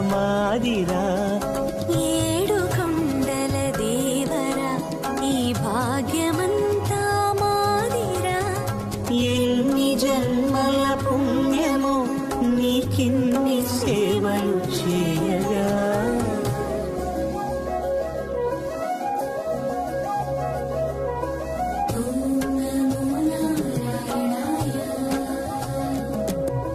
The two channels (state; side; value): identical; both; correlation 1.00